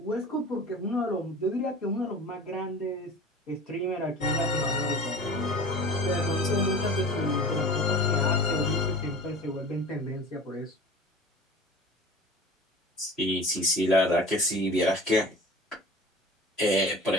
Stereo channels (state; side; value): normal; both; correlation 0.39